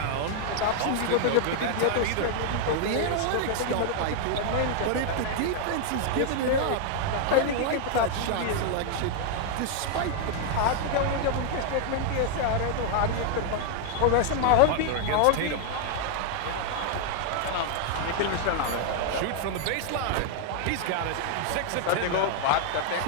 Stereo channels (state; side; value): different; both; correlation 0.00